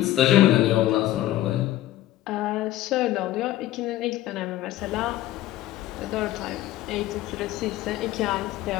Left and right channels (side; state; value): right; quieter; 14.6 dB